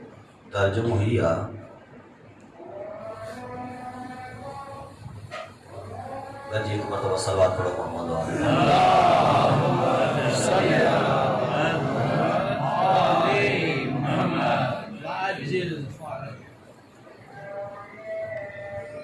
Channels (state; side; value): identical; both; correlation 1.00